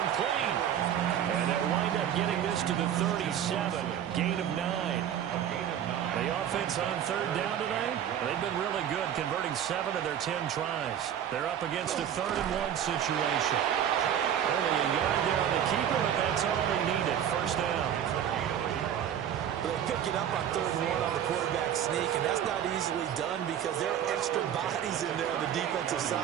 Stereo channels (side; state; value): left; quieter; 9.8 dB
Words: And they'll wind up getting this to the 37. Gain of 9. The offense on third down tonight, they've been really good, converting 7 of their 10 tries. They're up against a 3rd-and-1 situation. Only a yard there on the keeper, but that's all they needed. First down. They pick it up on 3rd and 1 on the quarterback sneak, and that's not easily done because there are extra bodies in there on the defensive